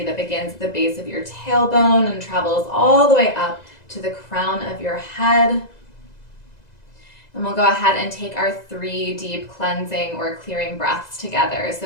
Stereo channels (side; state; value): right; late; 2.0 ms